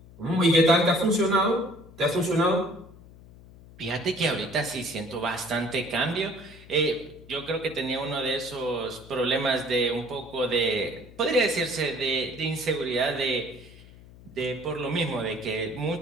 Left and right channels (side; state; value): left; noise; hum, 21 dB below the sound